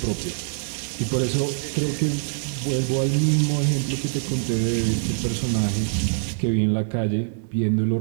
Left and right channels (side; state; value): left; silent; digital silence